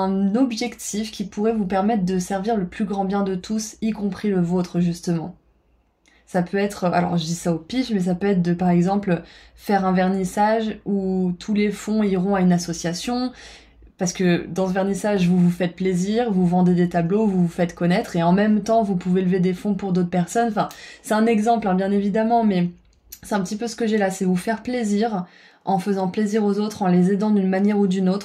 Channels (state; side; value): identical; both; correlation 1.00